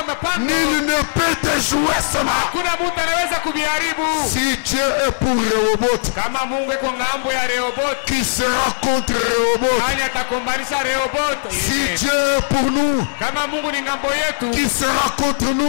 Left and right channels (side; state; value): right; silent; 64 dB below the other